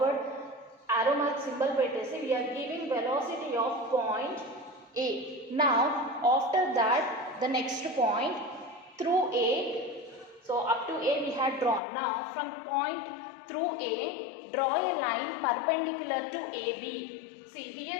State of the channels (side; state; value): right; drops out; at 11.8 s